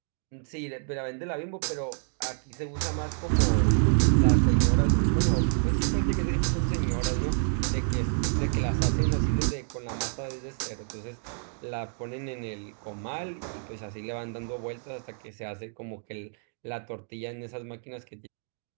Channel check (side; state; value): left; silent; digital silence